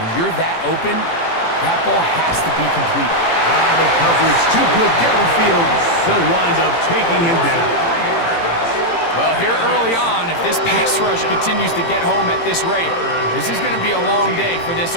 you're that open, that ball has to be complete. The coverage too good downfield. They'll wind up taking him down. Well, here early on, if this pass rush continues to get home at this rate, this is going to be a long day for this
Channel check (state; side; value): late; right; 18 ms